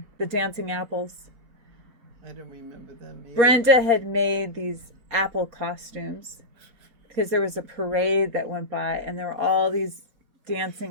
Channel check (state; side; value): late; left; 4.2 ms